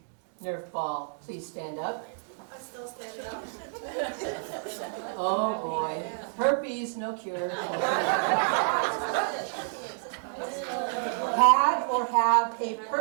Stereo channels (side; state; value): left; silent; 58 dB below the other